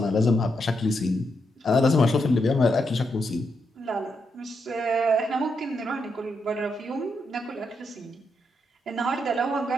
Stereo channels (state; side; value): normal; both; correlation 0.81